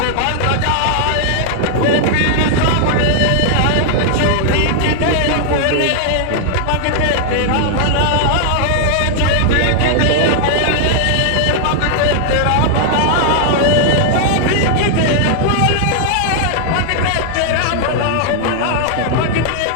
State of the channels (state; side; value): different; both; correlation 0.00